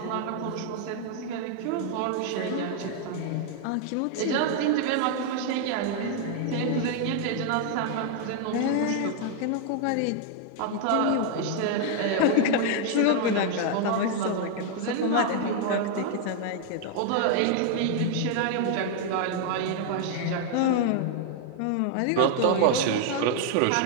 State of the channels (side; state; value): both; different; correlation 0.00